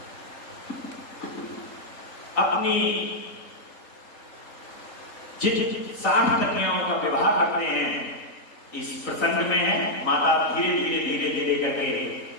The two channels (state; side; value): late; right; 3.8 ms